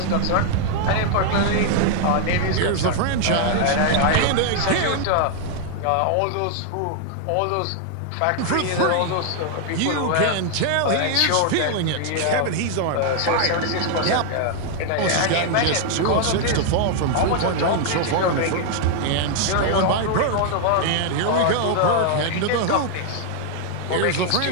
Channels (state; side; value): different; both; correlation 0.00